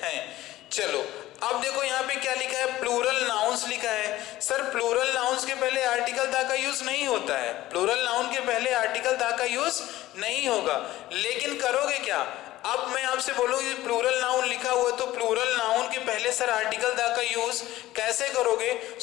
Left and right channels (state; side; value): quieter; right; 15.9 dB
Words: चलो अब देखो यहाँ पे क्या लिखा है, प्लूरल नाउन्स लिखा है। सर प्लूरल नाउन्स के पहले आर्टिकल दा का यूज नहीं होता है, प्लूरल नाउन के पहले आर्टिकल दा का यूज नहीं होगा। लेकिन करोगे क्या, अब मैं आपसे बोलूंगी प्लूरल नाउन लिखा हुआ है तो प्लूरल नाउन के पहले सर आर्टिकल दा का यूज कैसे करोगे,